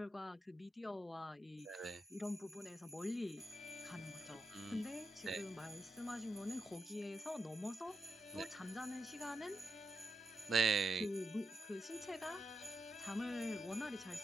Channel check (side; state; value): both; normal; correlation 0.84